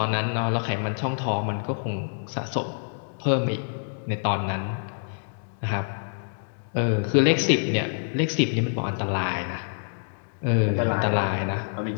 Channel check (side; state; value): right; silent; digital silence